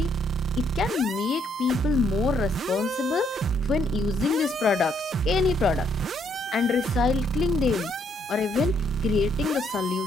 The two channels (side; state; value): both; normal; correlation 0.71